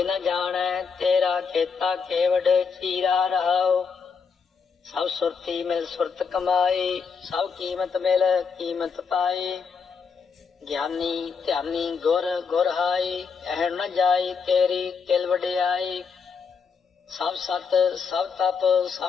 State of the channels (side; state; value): right; quieter; 5.8 dB